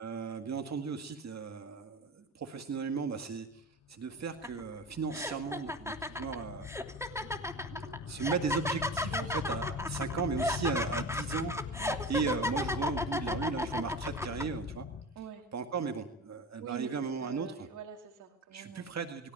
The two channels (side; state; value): both; normal; correlation 0.31